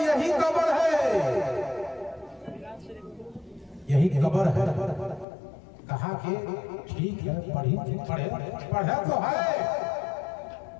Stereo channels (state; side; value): drops out; right; at 5.2 s